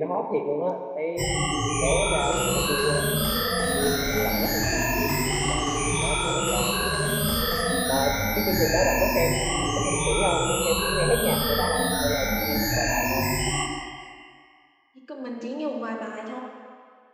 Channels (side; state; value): both; identical; correlation 1.00